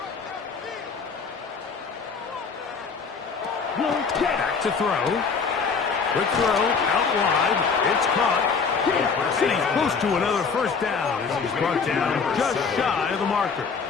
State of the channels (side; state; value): right; quieter; 5.4 dB